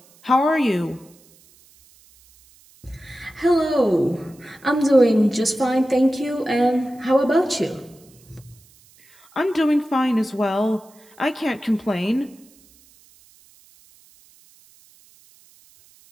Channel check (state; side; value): noise; right; hiss, 29 dB below the sound